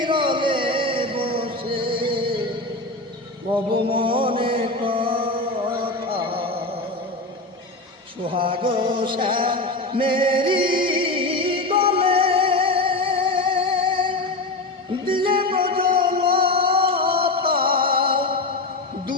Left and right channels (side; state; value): right; quieter; 3.0 dB